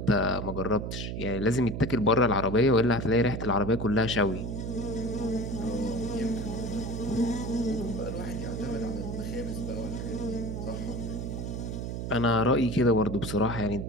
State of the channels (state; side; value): noise; right; hum, 4 dB below the sound